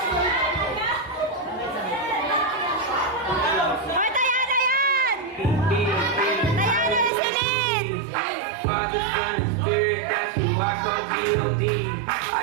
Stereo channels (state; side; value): drops out; left; at 7.1 s